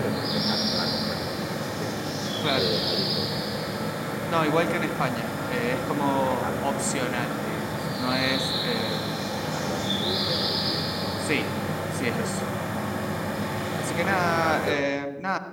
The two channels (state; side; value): identical; both; correlation 1.00